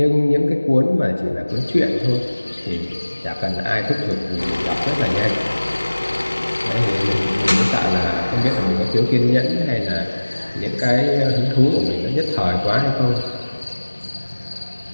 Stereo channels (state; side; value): inverted; both; correlation -1.00